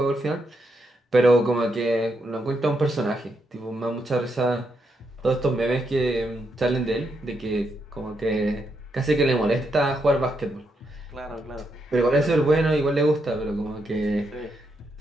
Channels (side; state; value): both; normal; correlation 0.80